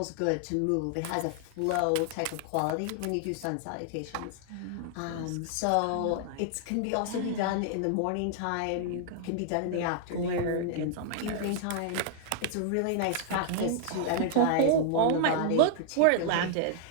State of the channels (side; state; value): both; different; correlation -0.01